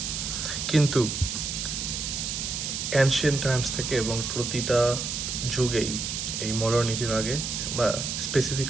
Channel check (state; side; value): noise; right; hiss, 3 dB below the sound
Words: কিন্তু অ্যানশিয়েন্ট টাইমস থেকে এবং প্রতিটা যুগেই এই মডার্নিটির আগে বা